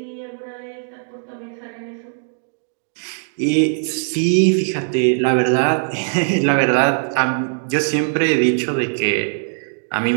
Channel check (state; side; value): silent; left; 66 dB below the other